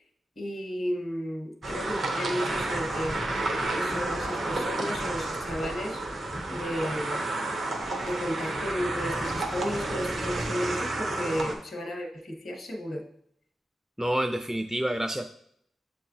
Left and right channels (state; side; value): normal; both; correlation 0.89